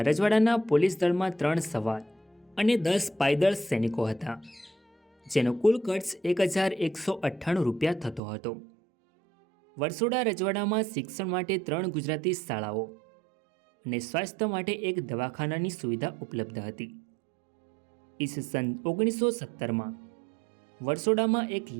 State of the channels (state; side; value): drops out; left; at 8.2 s